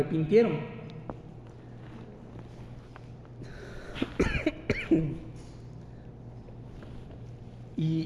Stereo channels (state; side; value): identical; both; correlation 1.00